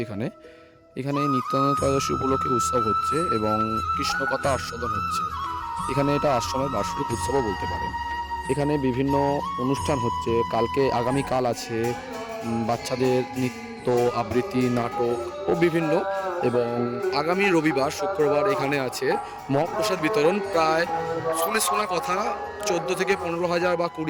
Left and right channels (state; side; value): identical; both; correlation 1.00